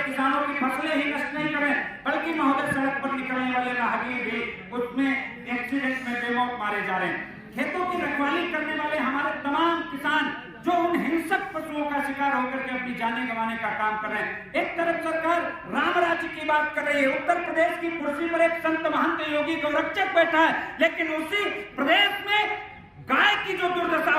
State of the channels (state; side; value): identical; both; correlation 1.00